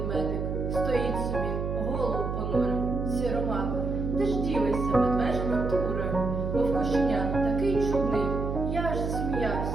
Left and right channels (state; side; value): noise; right; hum, 2 dB below the sound